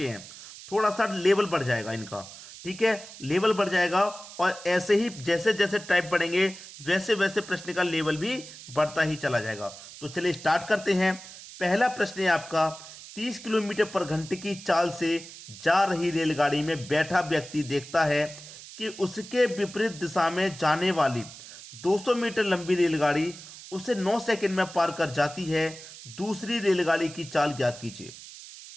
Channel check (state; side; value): noise; right; hiss, 15 dB below the sound